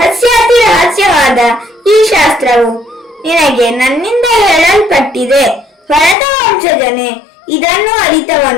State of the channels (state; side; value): drops out; right; at 6.2 s